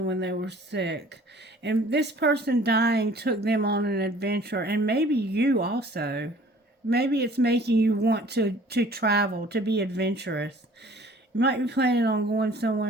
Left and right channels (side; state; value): both; normal; correlation 0.52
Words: when they were sick. And this person dying took them on an adventure. And maybe you also. Maybe it's making you want to travel, to be adventurous. You might be planning on going